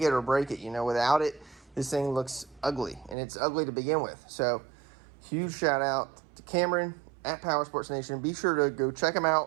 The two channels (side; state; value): left; drops out; at 3.2 s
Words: it or break it. Without it, this thing looks ugly, and it's ugly to begin with. So huge shout out to Cameron at Power Sports Nation. Be sure to go check them